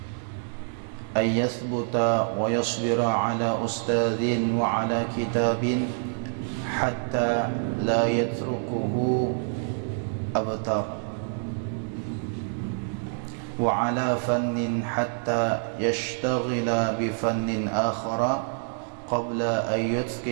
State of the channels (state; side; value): silent; left; 60 dB below the other